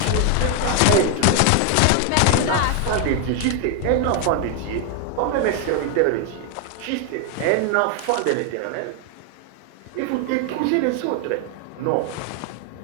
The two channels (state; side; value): different; both; correlation 0.01